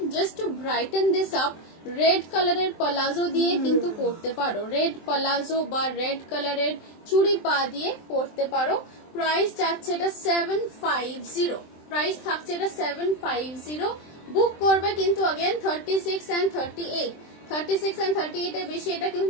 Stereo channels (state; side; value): late; right; 23 ms